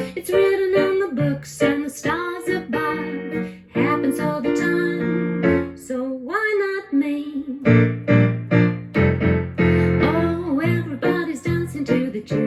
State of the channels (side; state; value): both; identical; correlation 1.00